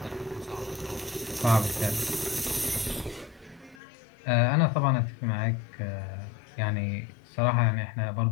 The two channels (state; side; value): drops out; right; at 3.8 s